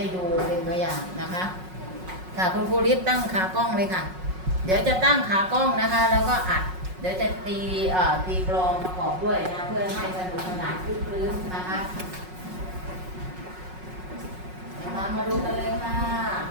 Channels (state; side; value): late; left; 5.4 ms